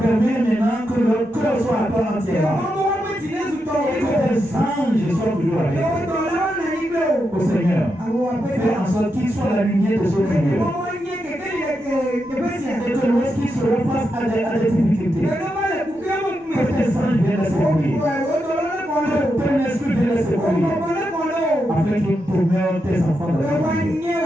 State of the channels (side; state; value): both; normal; correlation 0.85